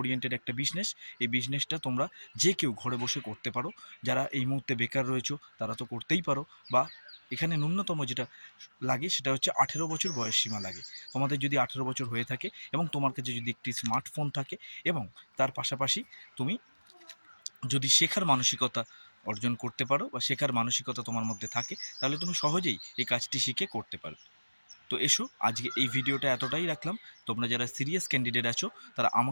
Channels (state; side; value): inverted; both; correlation -1.00